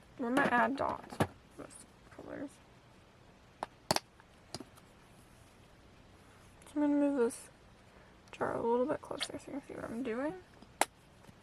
We're gonna add dots with colors. So I'm gonna move this jar a little bit closer so you can see what I'm doing.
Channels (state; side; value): identical; both; correlation 1.00